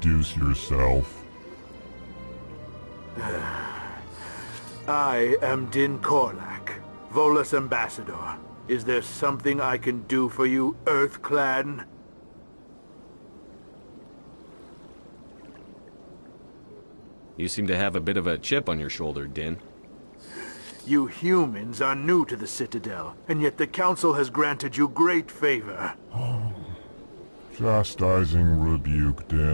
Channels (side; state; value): both; inverted; correlation -1.00